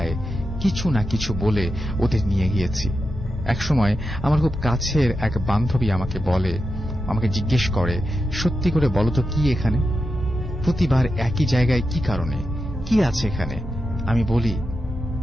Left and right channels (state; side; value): normal; both; correlation 0.89